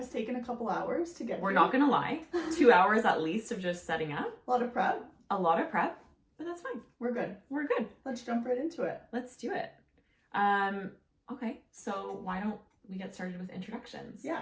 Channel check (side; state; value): both; identical; correlation 1.00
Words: taken a couple hours to get We're here. not going to lie. 2 hours at least of just setting up. A lot of prep. But that's fine. We're good. We're good. Let's jump right into it. Let's do it. Okay. So why don't we get started with introductions?